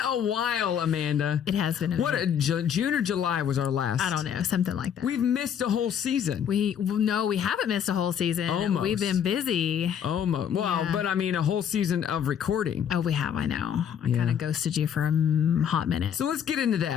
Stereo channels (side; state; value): right; quieter; 8.5 dB